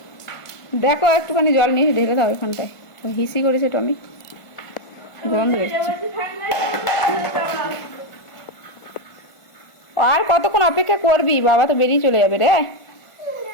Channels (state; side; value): late; right; 1.5 ms